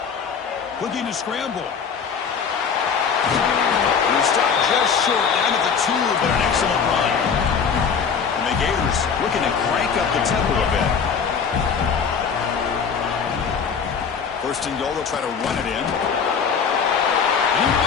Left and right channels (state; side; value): quieter; right; 6.4 dB